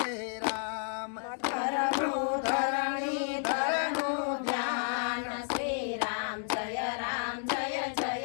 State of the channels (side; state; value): right; silent; 57 dB below the other